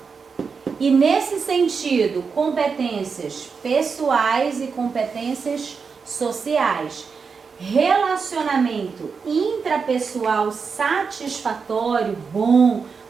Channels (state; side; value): quieter; left; 5.4 dB